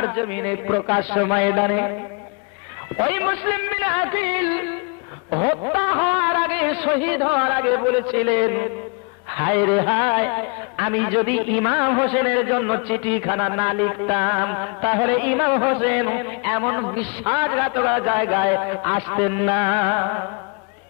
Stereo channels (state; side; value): quieter; right; 33.9 dB